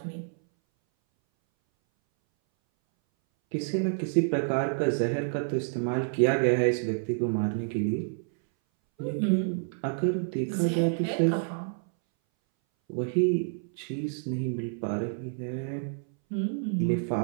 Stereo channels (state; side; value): silent; left; 59 dB below the other